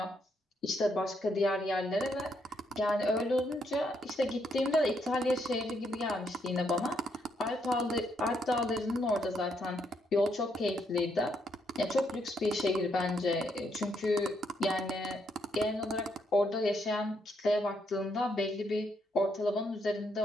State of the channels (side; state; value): both; normal; correlation 0.75